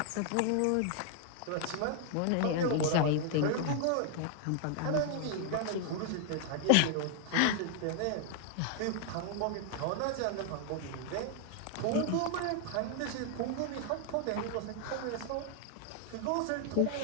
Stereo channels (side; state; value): both; different; correlation 0.00